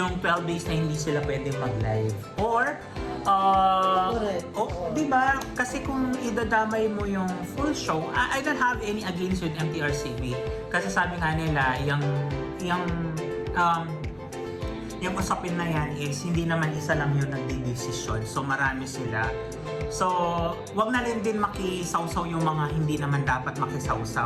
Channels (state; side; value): identical; both; correlation 1.00